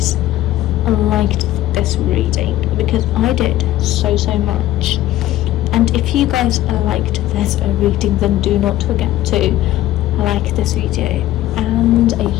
liked this reading, because I did so much. And if you guys liked this reading, then do not forget to like this video. And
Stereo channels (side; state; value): right; quieter; 14.6 dB